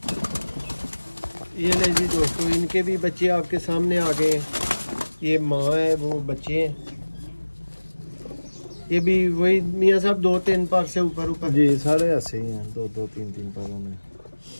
ये ले जी दोस्तों, इनके भी बच्चे आपके सामने आ गए हैं। ये माँ है, वो बच्चे हैं। ये भी वही मियां साहब 2-3 पार से ऊपर जी, सारे ऐसे ही हैं, 2-3 पारों में।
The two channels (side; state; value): both; inverted; correlation -1.00